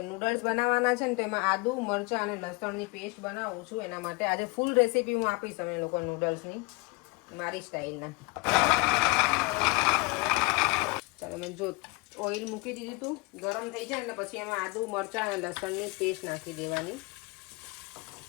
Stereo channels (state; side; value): quieter; right; 26.8 dB